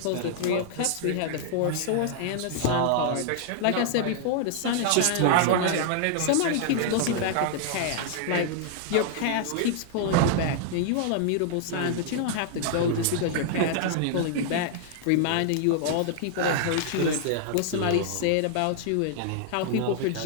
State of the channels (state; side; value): different; both; correlation -0.01